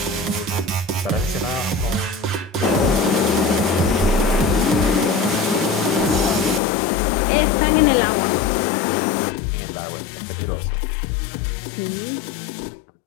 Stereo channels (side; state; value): right; drops out; at 6.6 s